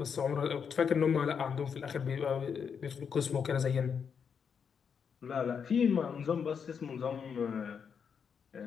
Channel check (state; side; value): quieter; right; 6.8 dB